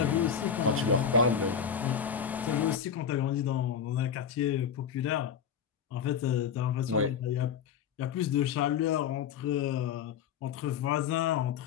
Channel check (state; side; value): quieter; right; 7.6 dB